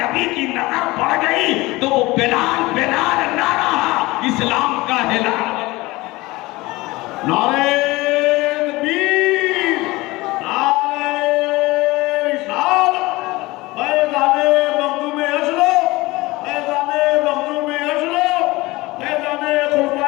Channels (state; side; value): quieter; right; 20.9 dB